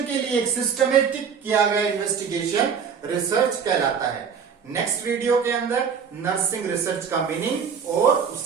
के लिए एक सिस्टमेटिक किया गया इन्वेस्टिगेशन रिसर्च कहलाता है। नेक्स्ट वीडियो के अंदर नर्सिंग रिसर्च का मीनिंग और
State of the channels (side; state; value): left; quieter; 6.7 dB